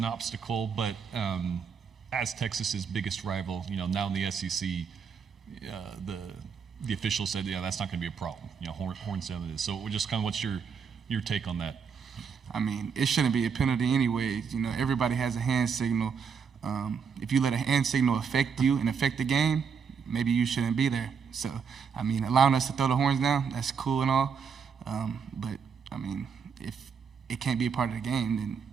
obstacle, but as Texas's biggest rival, now in the SEC, the officials said, yeah, that's not going to be a problem. Horns down it is. So just kind of what's your take on that? I mean, it shouldn't be a penalty anyways. Everybody has a hand signal. If you let a hand signal affect you and affect the game, maybe you shouldn't be there. So, I mean, allowing us to throw the horns down, that's cool and all. But, I mean, if it can't be a part of the game, then,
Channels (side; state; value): left; quieter; 6.3 dB